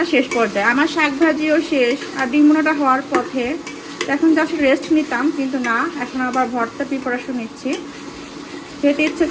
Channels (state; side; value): identical; both; correlation 1.00